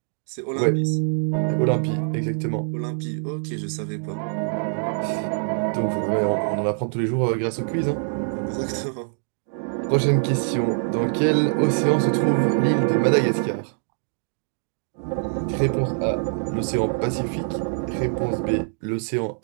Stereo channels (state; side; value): silent; left; digital silence